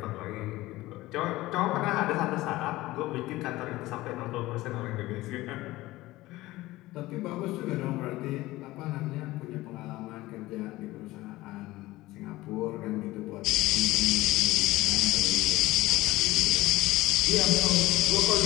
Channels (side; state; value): right; quieter; 18.3 dB